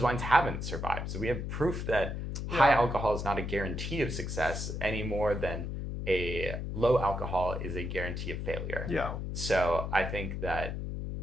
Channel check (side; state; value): left; noise; hum, 4 dB below the sound